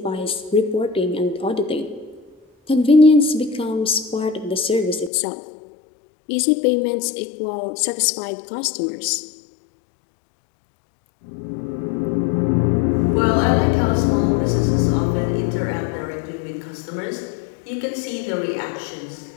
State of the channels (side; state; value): right; drops out; at 5.1 s